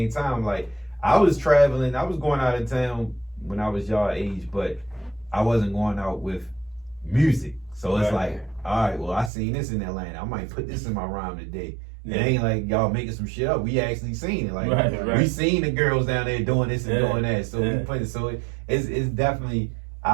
time. Like, I was traveling, I was going out of town when I was y'all age, but I wasn't going out with music. So it's Right. like, all right, well, I seen this in Atlanta. I might put this in my rhyme today. Yeah. It ain't like y'all making some shit up. We actually seen it. Like, Right. we seen the girls down there doing this and Yeah. doing that. So we put it. So it's definitely.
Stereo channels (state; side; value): drops out; left; at 9.3 s